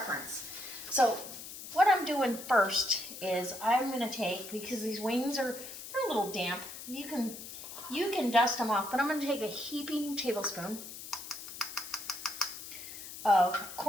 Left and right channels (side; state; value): left; noise; hiss, 11 dB below the sound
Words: So what I'm doing first is I'm going to take, because these wings they're a little damp, you can dust them off, but I'm going to take a heaping tablespoon of